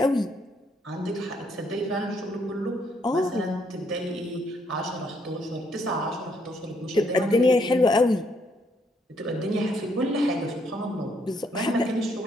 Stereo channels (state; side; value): normal; both; correlation 0.71